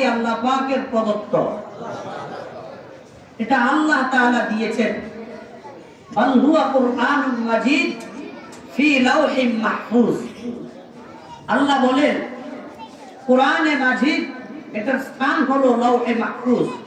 আল্লাহ পাকের প্রদত্ত? এটা আল্লাহ তাআলা দিয়েছেন। বাল হুয়া কুরআনুম মাজিদ ফি লাওহিম মাহফুজ। আল্লাহ বলেন কোরআনে মাজিদ এটার স্থান হলো লাওহে মাহফুজ।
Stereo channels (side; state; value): both; identical; correlation 1.00